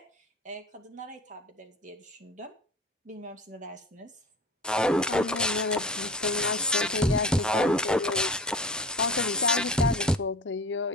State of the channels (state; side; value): normal; both; correlation 0.37